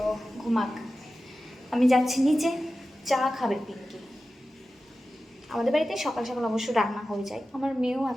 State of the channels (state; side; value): normal; both; correlation 0.94